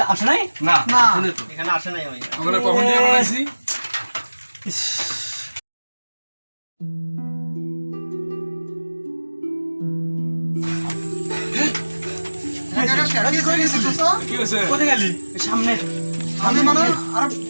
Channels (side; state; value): both; inverted; correlation -1.00